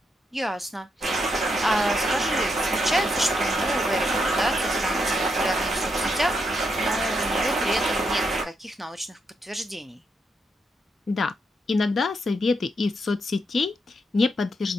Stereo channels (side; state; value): both; normal; correlation 0.80